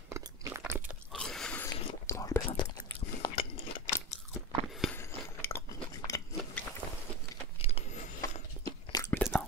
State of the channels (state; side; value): normal; both; correlation 0.23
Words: Bon, je plaisante. Maintenant,